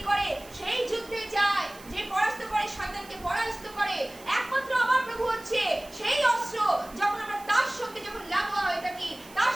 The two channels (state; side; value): noise; right; hiss, 21 dB below the sound